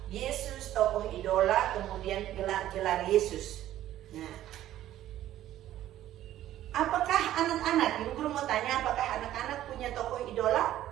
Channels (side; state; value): left; quieter; 13.1 dB